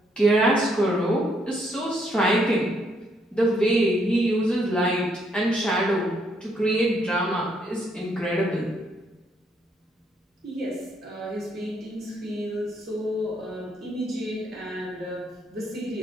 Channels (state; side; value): normal; both; correlation 0.72